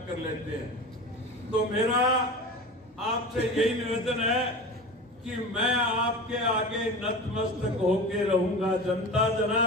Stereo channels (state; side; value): normal; both; correlation 0.31